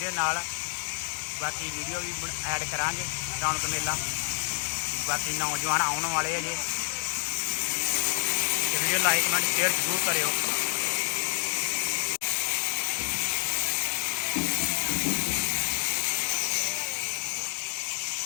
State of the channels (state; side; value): silent; right; 59 dB below the other